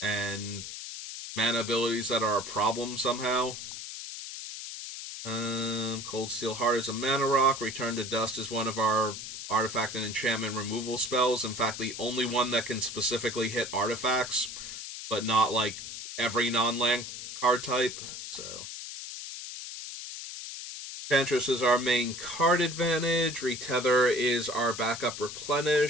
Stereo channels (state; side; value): noise; left; hiss, 9 dB below the sound